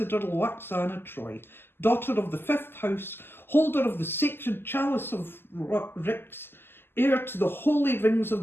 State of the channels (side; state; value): right; late; 0.11 ms